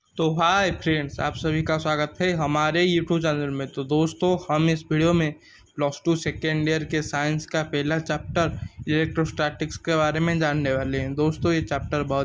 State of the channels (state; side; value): identical; both; correlation 1.00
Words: तो hi friends, आप सभी का स्वागत है हमारे यूट्यूब चैनल में। तो दोस्तों, हम इस वीडियो में +2 सेकेंड ईयर के साइंस का पहला चैप्टर इलेक्ट्रोस्टैटिक्स के बारे में जानने वाले हैं। दोस्तों, ये चैप्टर